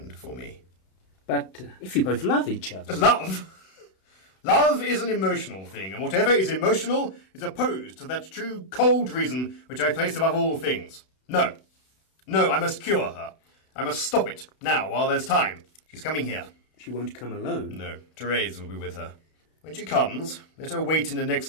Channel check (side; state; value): right; late; 32 ms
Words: for me. But if you both love each other... Love? Love is an emotional thing, and whatever is emotional is opposed to that true cold reason which I place above all things. No. No, I must cure her. I must stop it, now, while there's time. She's coming here. She won't come alone? No, Therese will be with her. When she comes, let her wait in the